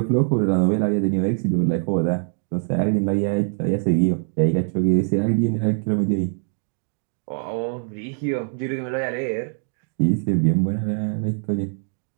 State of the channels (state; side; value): silent; left; 56 dB below the other